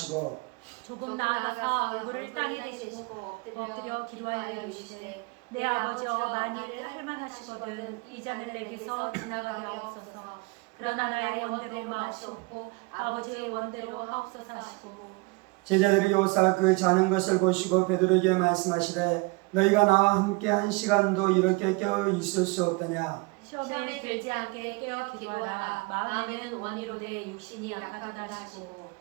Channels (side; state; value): left; quieter; 26.6 dB